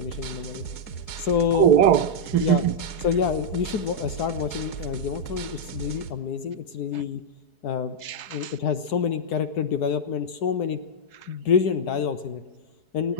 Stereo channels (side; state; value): right; late; 4.7 ms